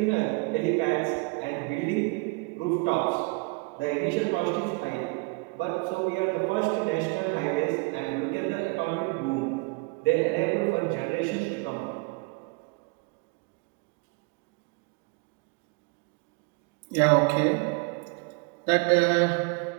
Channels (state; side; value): quieter; left; 29.3 dB